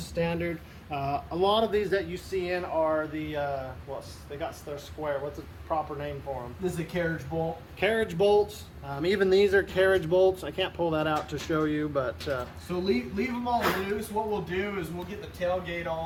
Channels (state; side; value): identical; both; correlation 1.00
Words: standard. A lot of these that you see in are the, they got their square. What's the proper name for them? This is a carriage bolt. Carriage bolts. Even these are carriage bolts. I can't pull that out to show you, but... So leave them all loose. What we'll do is we'll get the tailgate